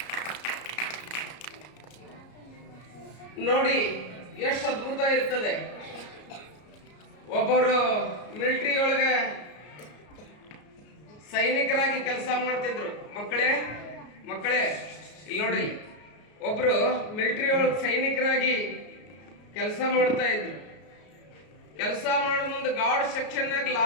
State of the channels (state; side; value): late; right; 33 ms